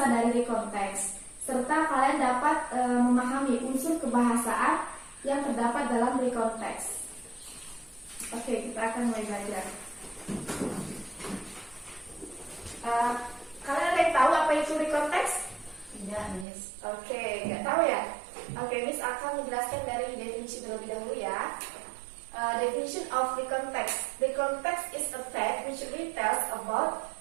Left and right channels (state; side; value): drops out; left; at 16.4 s